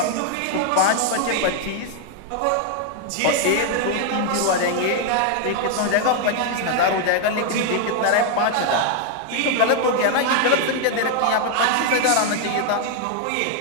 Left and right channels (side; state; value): both; different; correlation 0.00